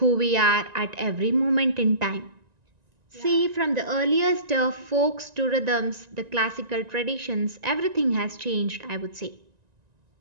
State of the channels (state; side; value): late; left; 1.9 ms